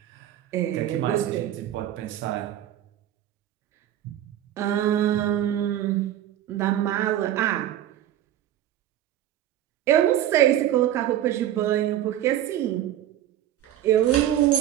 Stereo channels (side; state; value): left; quieter; 12.1 dB